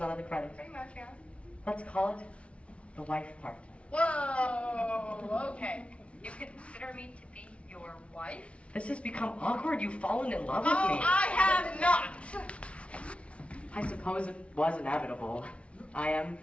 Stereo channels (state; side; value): late; right; 0.061 ms